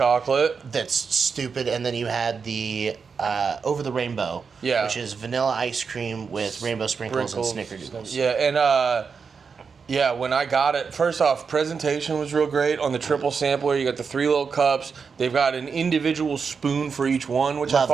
That's stupid. And then you had the Over the Rainbow, which is vanilla ice cream with rainbow sprinkles and snickerdoodles. Yeah, and when I got it, first off, presentation was real great. On the triple sampler, you got the 3 little cups. They've got an individual spoon for each one, which I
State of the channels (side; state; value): left; quieter; 5.6 dB